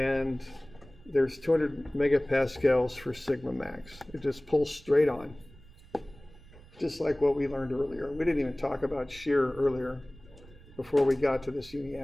there's 200 megapascals for sigma max. It just pulls straight on, just like what we learned earlier. We didn't even talk about shear earlier before we got to this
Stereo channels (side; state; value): right; noise; rumble, 22 dB below the sound